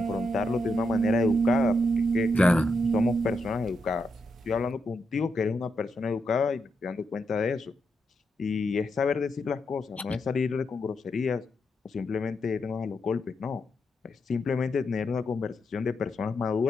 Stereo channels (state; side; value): normal; both; correlation 0.83